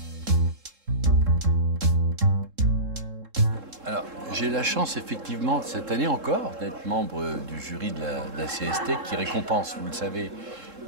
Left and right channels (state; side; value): late; left; 3.7 ms